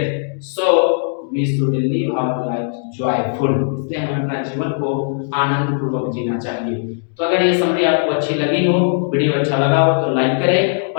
So we should live our life joyful. इसलिए हमें अपना जीवन को आनंद पूर्वक जीना चाहिए। तो अगर ये समरी आपको अच्छी लगी हो, वीडियो अच्छा लगा हो तो लाइक करें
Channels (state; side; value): silent; right; digital silence